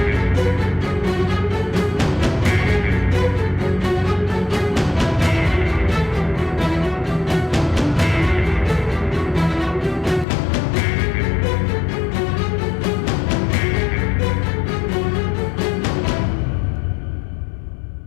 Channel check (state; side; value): drops out; right; at 10.2 s